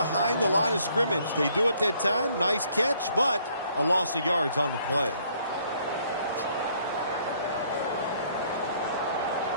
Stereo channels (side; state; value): both; inverted; correlation -0.64